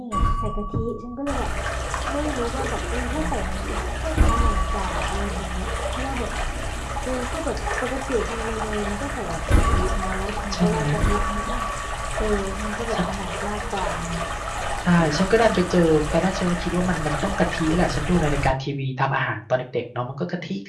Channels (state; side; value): identical; both; correlation 1.00